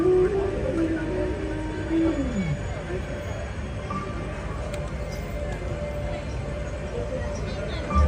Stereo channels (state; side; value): identical; both; correlation 1.00